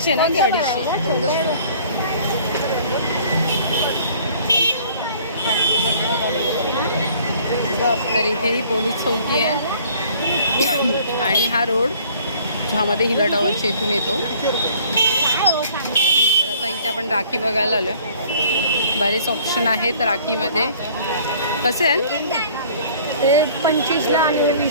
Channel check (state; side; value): inverted; both; correlation -0.54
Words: ना की 250? तर इथे ही पोलीस चौकी आहे. आणि हा रोड ज्यामध्ये हिला टॉवरच्या इथून येतो. तर आता इथे आपण राखी बघायला आलो. बरेच ऑप्शन आहेत राखीमध्ये. कसे आहेत ते 25ला आणि